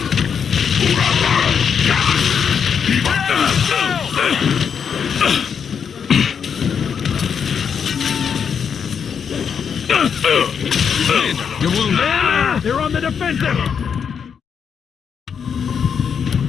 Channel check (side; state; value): right; quieter; 7.1 dB